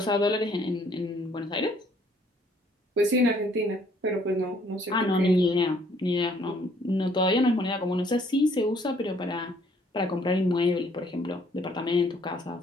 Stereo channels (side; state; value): both; normal; correlation 0.63